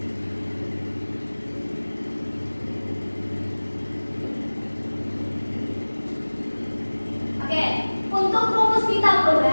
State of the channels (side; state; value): both; inverted; correlation -1.00